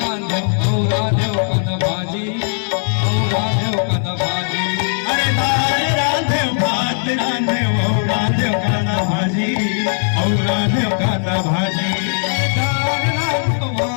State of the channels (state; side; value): silent; right; digital silence